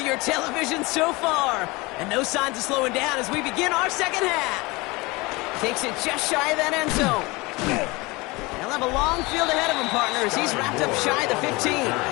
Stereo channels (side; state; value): right; quieter; 23.9 dB